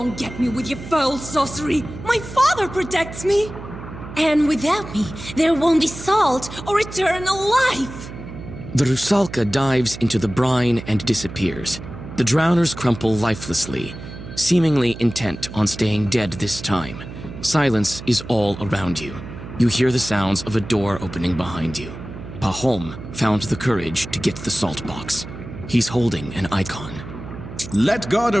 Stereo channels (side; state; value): right; noise; hum, 12 dB below the sound